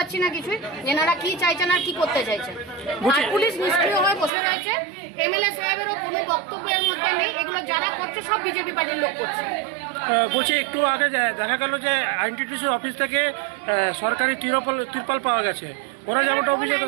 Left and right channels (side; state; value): left; drops out; at 4.3 s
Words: না কিছুই, এনারা কি চাইছেন আর কি করতে চাইছেন। আর পুলিশ নিষ্ক্রিয় হয়ে বসে রয়েছে, এমএলএ সাহেবেরও কোনো বক্তব্যের মধ্যে নেই, এগুলো যারা করছে সব বিজেপি পার্টির লোক করছে। বলছি একটু আগে দেখা গেল যে আইনটিটিউসির অফিস থেকে সরকারি তিরপাল পাওয়া গেছে, ওরা যেমনটা